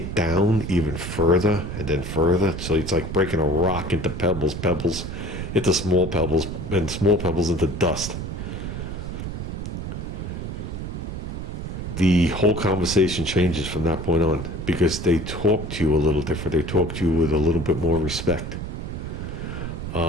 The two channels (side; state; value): right; noise; rumble, 6 dB below the sound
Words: down even further and then further. So it's like breaking a rock into pebbles into small pebbles, and small pebbles into dust. The whole conversation changes from that point on because they talk to you a little different. They talk to you with a little bit more respect.